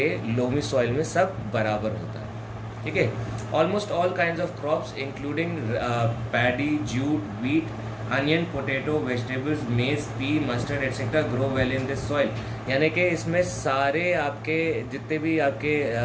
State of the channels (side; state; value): both; identical; correlation 1.00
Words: loamy soil में सब बराबर होता है। ठीक है। Almost all kinds of crops including paddy, jute, wheat, onion, potato, vegetables, maize, pea, mustard etcetera grow well in this soil. यानी कि इसमें सारे आपके जितने भी आपके